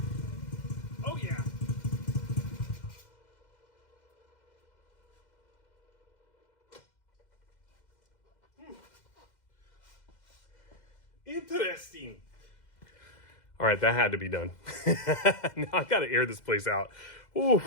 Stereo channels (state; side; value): late; right; 2.0 ms